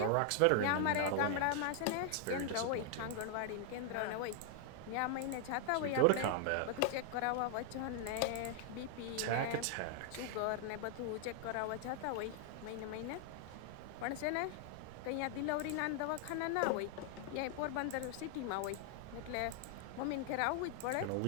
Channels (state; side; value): different; both; correlation 0.00